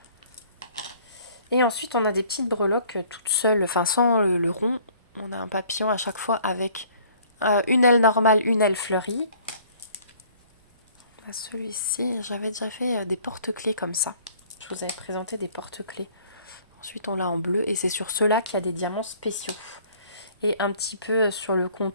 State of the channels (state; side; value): inverted; both; correlation -0.55